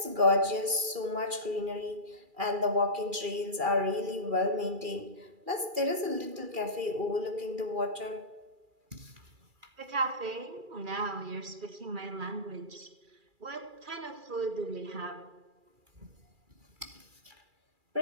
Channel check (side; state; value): left; late; 2.4 ms